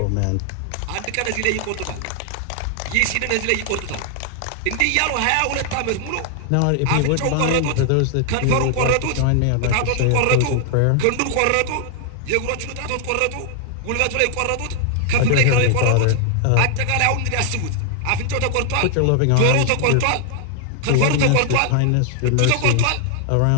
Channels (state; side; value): different; both; correlation 0.00